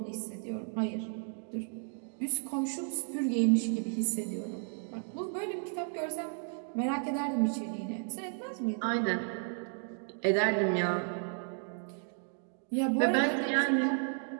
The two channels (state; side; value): silent; left; 56 dB below the other